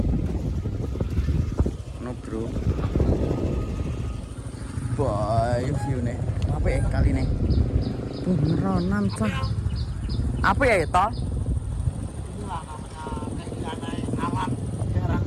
No, Bro. Boy, view nih. Apa ya kali nih? Beneran cah. Apa ya itu? Itulah namanya keindahan alam daerah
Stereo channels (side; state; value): both; identical; correlation 1.00